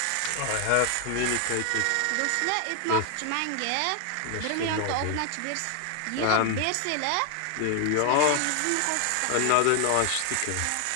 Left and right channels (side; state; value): both; different; correlation 0.00